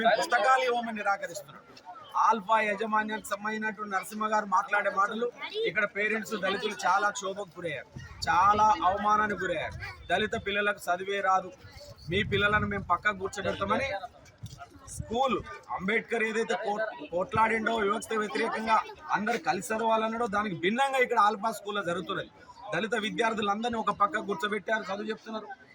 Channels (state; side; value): identical; both; correlation 1.00